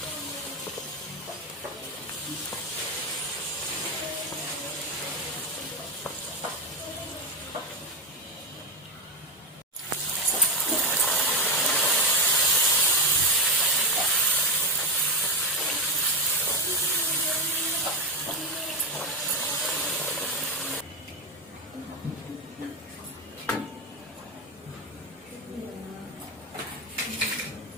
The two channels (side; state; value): both; normal; correlation 0.10